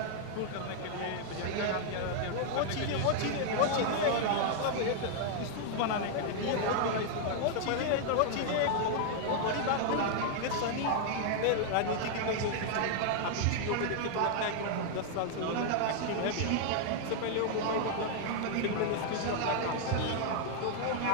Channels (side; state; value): both; different; correlation 0.00